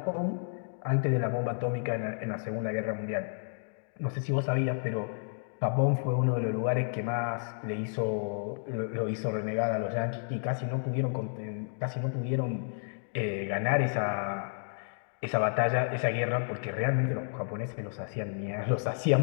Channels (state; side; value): silent; right; digital silence